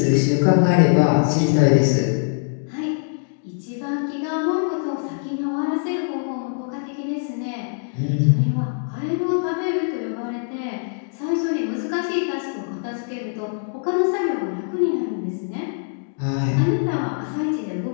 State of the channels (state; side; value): silent; right; digital silence